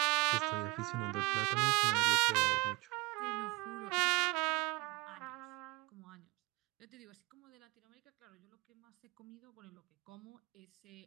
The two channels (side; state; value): left; quieter; 24.2 dB